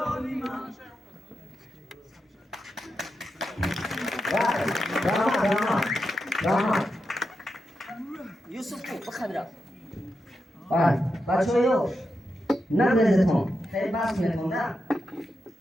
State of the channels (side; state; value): both; normal; correlation 0.87